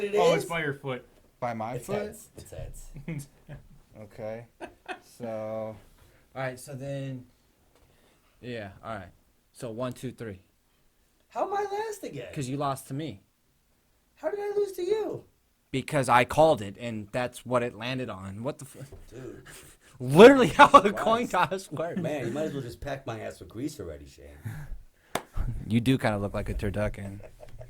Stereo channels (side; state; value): both; identical; correlation 1.00